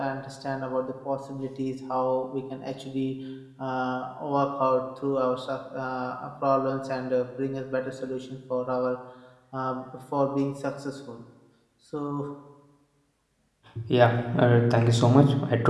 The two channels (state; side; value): identical; both; correlation 1.00